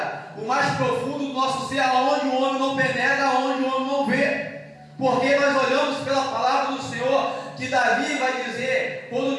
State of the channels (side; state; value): both; identical; correlation 1.00